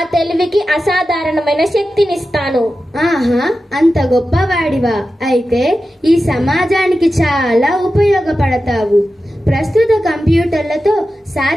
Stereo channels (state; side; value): normal; both; correlation 0.92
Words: తెలివికి అసాధారణమైన శక్తినిస్తాను. ఆహా, అంత గొప్పవాడివా? అయితే ఈ సమాజానికి చాలా ఉపయోగపడతావు. ప్రస్తుత కంప్యూటర్లతో